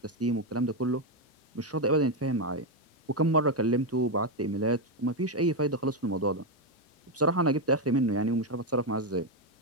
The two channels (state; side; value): normal; both; correlation 0.06